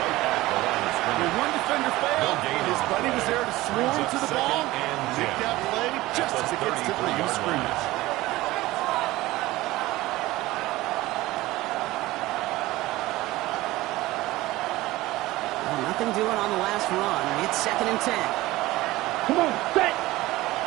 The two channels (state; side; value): quieter; left; 18.2 dB